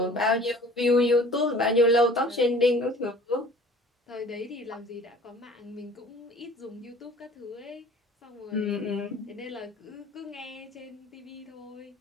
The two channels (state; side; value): normal; both; correlation 0.48